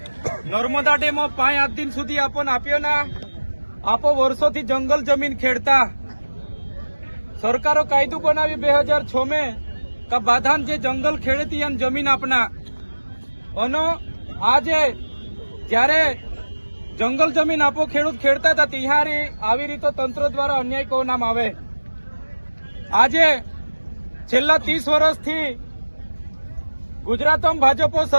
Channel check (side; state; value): both; inverted; correlation -1.00